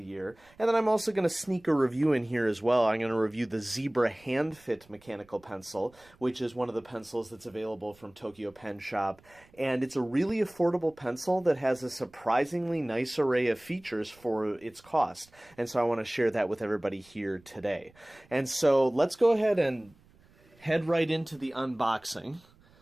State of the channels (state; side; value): noise; right; rumble, 29 dB below the sound